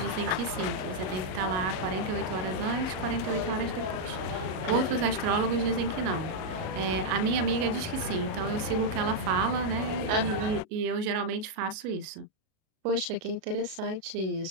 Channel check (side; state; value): left; late; 38 ms